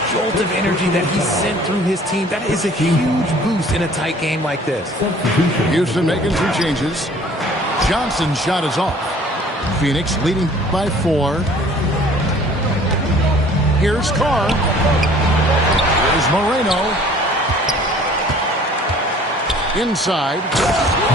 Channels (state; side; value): normal; both; correlation 0.52